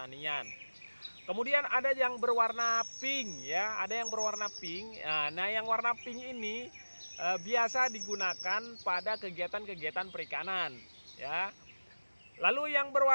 Kemudian ada yang berwarna pink ya, ada yang berwarna pink. Nah, yang warna pink ini biasa digunakan pada kegiatan-kegiatan perikanan ya. Lalu yang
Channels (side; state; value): both; inverted; correlation -1.00